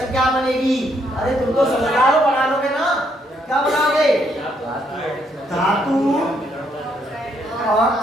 क्या बनेगी? अरे तुम तो समझदार हो, बना लोगे ना? क्या बनाओगे? धातु,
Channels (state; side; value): normal; both; correlation 0.73